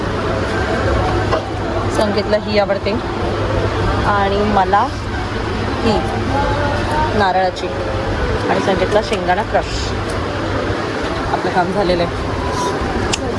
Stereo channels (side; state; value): both; identical; correlation 1.00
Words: संकेतला ही आवडते आणि मला ही नारळाची आणि संकेतला शेंगदाणा क्रश. आपलं काम झालेलं